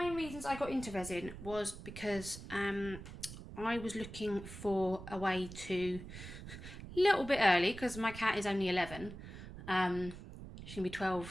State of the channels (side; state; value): right; noise; rumble, 12 dB below the sound